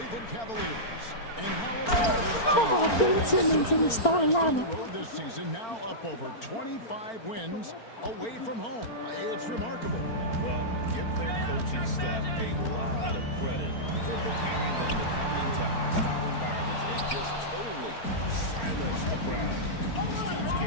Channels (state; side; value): late; right; 4.4 ms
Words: Cavaliers. And how about this team? Simmons in the starting On the lineup. road this season, now up over 25 wins away from home. It's remarkable. Well, give their coaching staff a lot of credit for preparing them to come into hostile environments and just totally silence the crowd. This team's